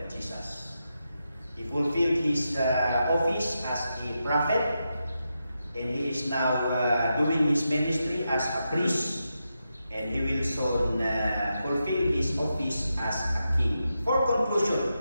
Jesus. He fulfilled his office as a prophet, and he is now doing his ministry as a priest, and he will soon fulfill his office as a king. For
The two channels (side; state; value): both; inverted; correlation -0.87